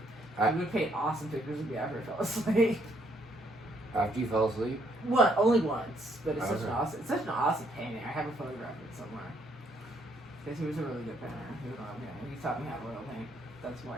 I would paint awesome pictures of me after I fell asleep. After you fell asleep? Only once, but it's such an awesome painting. I have a photograph of it somewhere. Because he was a really good painter. He taught me how to oil paint. That's why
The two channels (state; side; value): normal; both; correlation 0.70